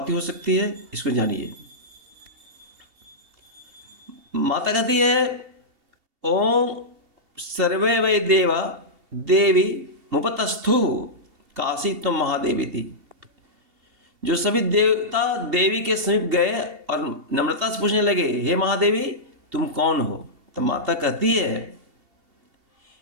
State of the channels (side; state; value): left; late; 2.7 ms